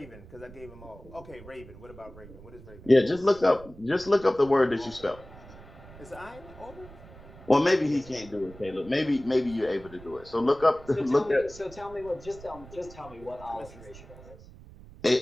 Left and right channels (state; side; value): noise; right; rumble, 19 dB below the sound